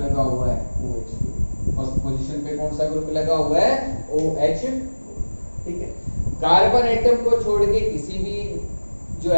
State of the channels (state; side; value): inverted; both; correlation -1.00